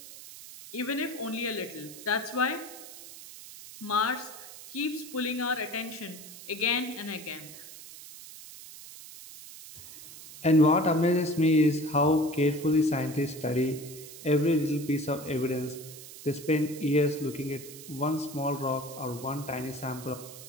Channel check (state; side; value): noise; right; hiss, 15 dB below the sound